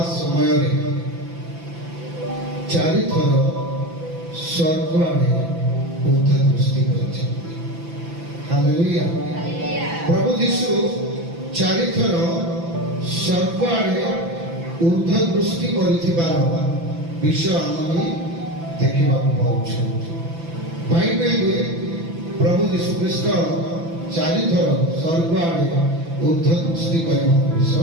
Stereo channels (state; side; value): late; left; 6.0 ms